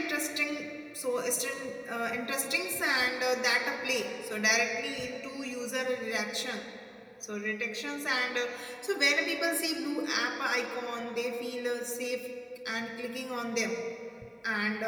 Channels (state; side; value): identical; both; correlation 1.00